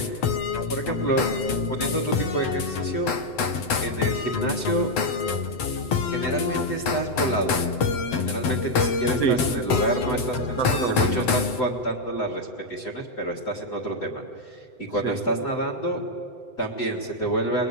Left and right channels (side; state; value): right; late; 7.9 ms